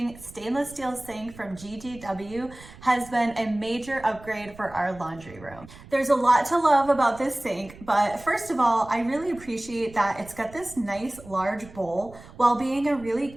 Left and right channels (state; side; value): noise; right; rumble, 19 dB below the sound